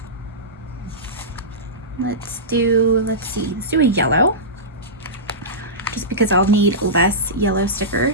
Let's do a yellow. Just because I'll need less yellow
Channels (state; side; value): normal; both; correlation -0.17